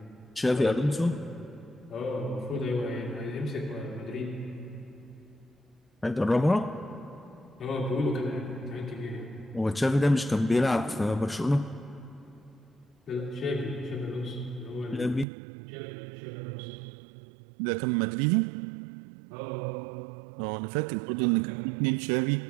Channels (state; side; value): drops out; left; at 15.2 s